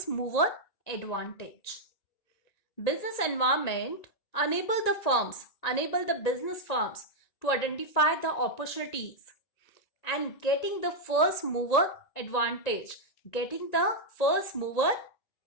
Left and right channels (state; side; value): late; right; 1.9 ms